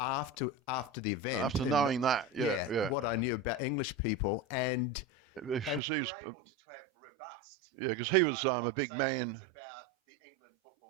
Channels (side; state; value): left; drops out; at 5.8 s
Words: the event, after knowing that, what I knew about English people, and we were able to have robust because he was conversations about the England football